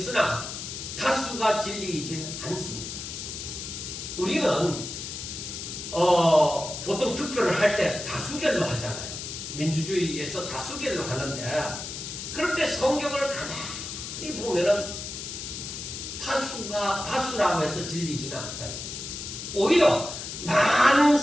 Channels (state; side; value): noise; left; hiss, 7 dB below the sound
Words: 다수가 진리이지는 않습니다. 우리는 보통 투표를 할 때 다수결로 하잖아요. 민주주의에서 다수결로 하는데, 그런데 성경을 가만히 보면은 다수라고 해서 진리지는 않다. 오히려 많은